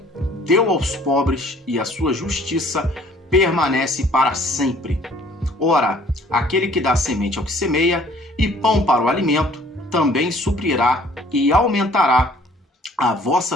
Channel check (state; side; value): normal; both; correlation 0.56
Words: deu aos pobres, e a sua justiça permanece para sempre. Ora, aquele que dá semente ao que semeia e pão para o alimento, também suprirá e aumentará a vossa